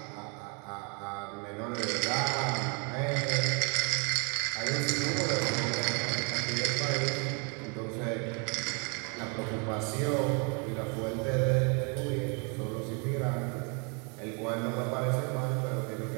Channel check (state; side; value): quieter; left; 34.9 dB